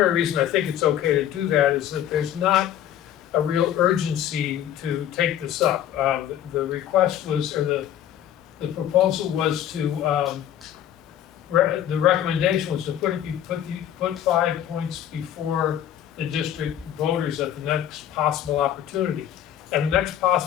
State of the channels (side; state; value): right; quieter; 10.8 dB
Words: reason I think it's okay to do that, is that there's not a real urgency to take this up. The request was, or the proposal was to, the recommendation was to put 5 points before the district voters at the next possible opportunity. And the next